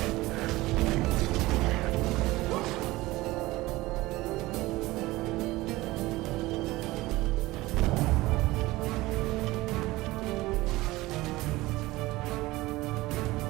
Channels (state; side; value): quieter; left; 19.3 dB